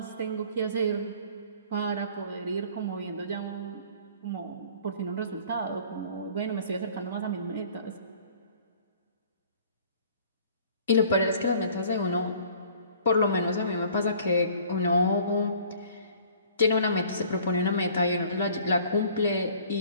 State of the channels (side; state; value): both; inverted; correlation -0.53